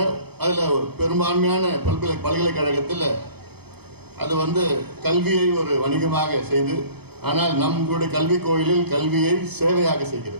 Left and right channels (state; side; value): late; left; 0.97 ms